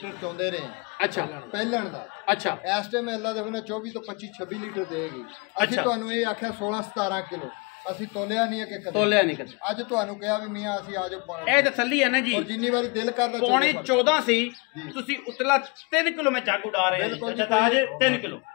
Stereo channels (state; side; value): quieter; right; 30.2 dB